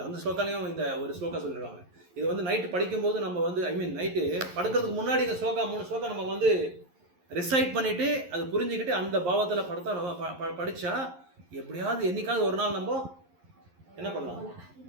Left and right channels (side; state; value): left; late; 11 ms